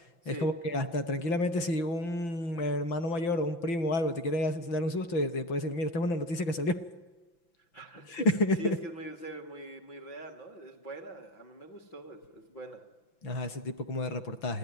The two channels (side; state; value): right; late; 5.9 ms